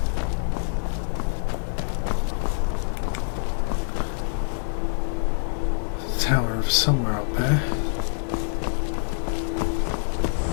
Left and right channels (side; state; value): right; silent; digital silence